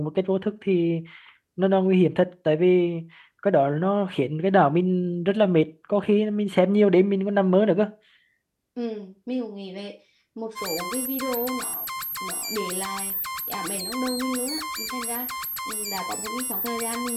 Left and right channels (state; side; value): identical; both; correlation 1.00